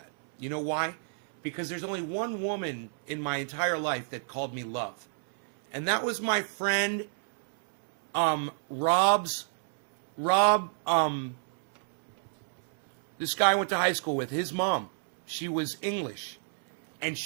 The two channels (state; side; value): silent; left; 58 dB below the other